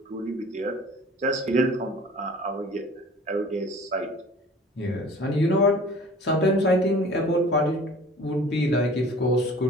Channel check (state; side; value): normal; both; correlation 0.46